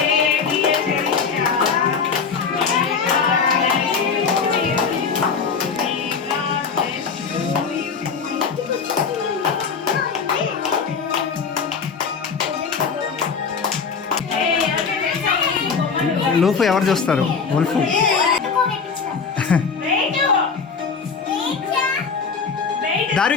Loaf ఎవరు చూస్తారు? ఉల్ఫ్.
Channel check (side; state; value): right; quieter; 5.6 dB